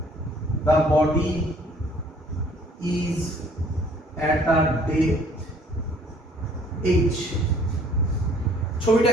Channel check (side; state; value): both; normal; correlation 0.58